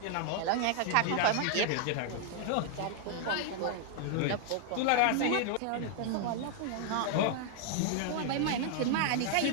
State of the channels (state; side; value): different; both; correlation 0.00